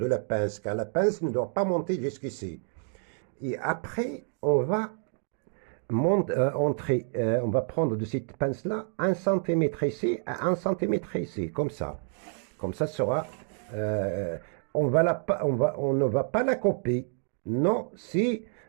la pince, car la pince ne doit pas monter jusqu'ici. Et après, on va on va prendre de cette pince-là 1 cm ici à 1 cm ici, comme ça. Comme ça sera, on ne va pas la couper. Non,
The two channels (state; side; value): silent; left; 56 dB below the other